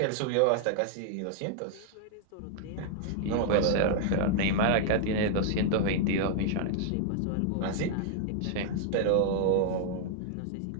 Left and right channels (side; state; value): both; different; correlation 0.00